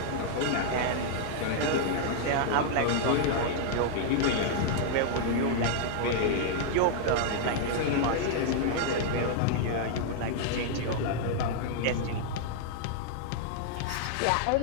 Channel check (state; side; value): different; both; correlation -0.01